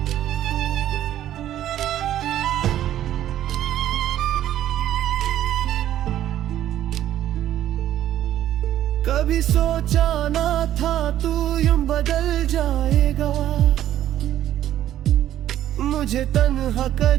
कभी सोचा ना था तू यूं बदल जाएगा, मुझे तन्हा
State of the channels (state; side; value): quieter; left; 12.1 dB